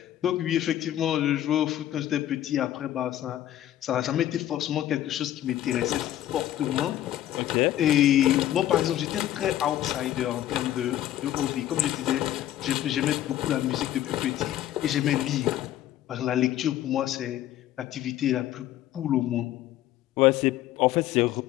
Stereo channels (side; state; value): right; quieter; 12.8 dB